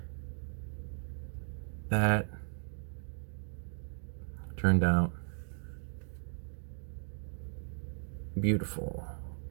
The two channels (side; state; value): left; silent; digital silence